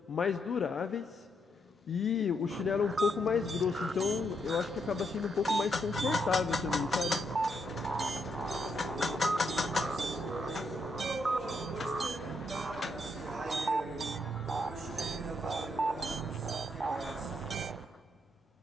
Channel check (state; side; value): normal; both; correlation 0.78